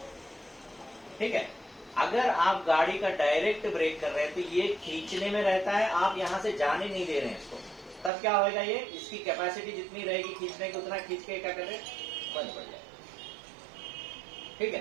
ठीक है, अगर आप गाड़ी का डायरेक्ट ब्रेक कर रहे हैं तो ये खींचने में रहता है, आप यहाँ से जाने नहीं दे रहे हैं इसको, तब क्या होगा, ये इसकी कैपेसिटी जितनी रहेगी खींचने की उतना खींच के क्या कर रहे, बंद पड़ जाएगा। ठीक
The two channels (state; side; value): drops out; left; at 8.1 s